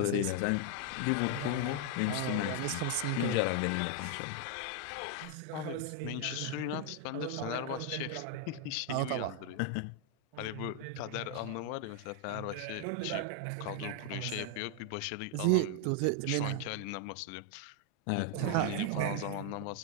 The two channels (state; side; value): different; both; correlation 0.00